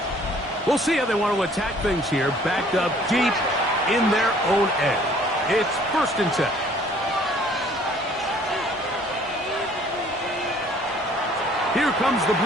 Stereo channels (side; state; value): both; normal; correlation 0.57